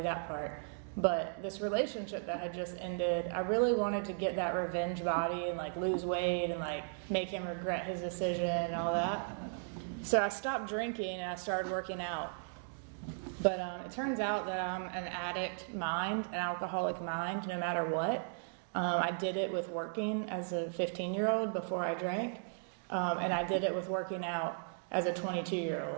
that part. But this relationship that had just ended, I really wanted to get that revenge body and like lose weight and like make him regret his decision and all that. So I stopped drinking and I started working out. But it turns out that I'm an addict mind, an alcoholic mind, no matter what. I did it with working as a 15-year-old before I drank. And I did it with working out as a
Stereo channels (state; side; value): silent; left; digital silence